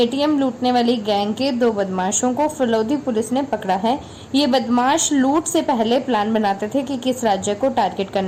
लूटने वाली गैंग के 2 बदमाशों को फलोदी पुलिस ने पकड़ा है। ये बदमाश लूट से पहले प्लान बनाते थे कि किस राज्य को टारगेट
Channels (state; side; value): identical; both; correlation 1.00